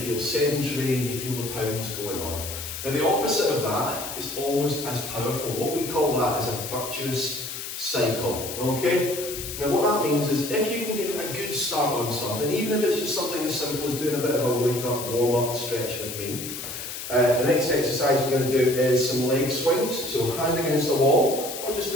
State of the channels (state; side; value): noise; left; hiss, 8 dB below the sound